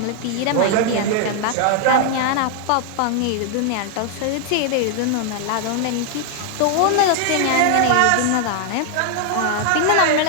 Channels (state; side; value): different; both; correlation 0.00